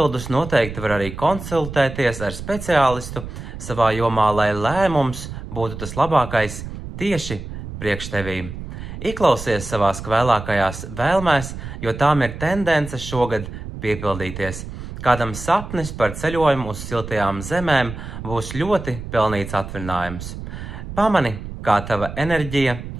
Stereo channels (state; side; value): noise; right; rumble, 10 dB below the sound